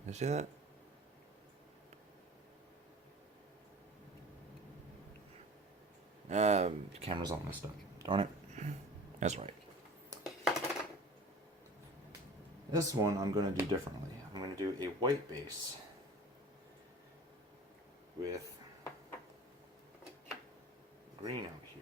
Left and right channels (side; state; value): both; normal; correlation 0.42